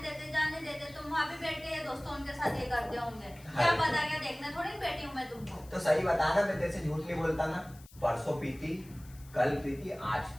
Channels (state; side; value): noise; left; hiss, 23 dB below the sound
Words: देते, तुम वहाँ भी बैठ के ये दोस्तों उनके साथ ये करते होंगे, क्या पता, क्या देखने थोड़ी बैठी हूँ मैं तुमको। तो सही बता ना, मैं तेरे से झूठ नहीं बोलता ना। परसों पीती, कल पीती, आज